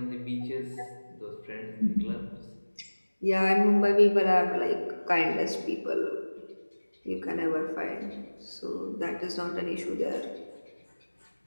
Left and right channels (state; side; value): inverted; both; correlation -1.00